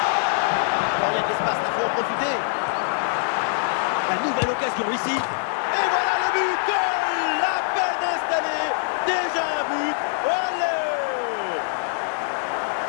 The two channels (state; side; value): silent; right; 63 dB below the other